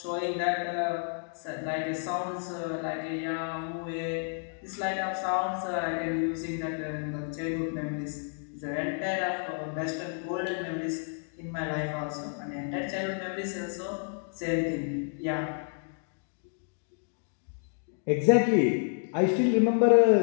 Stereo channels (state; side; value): silent; right; 58 dB below the other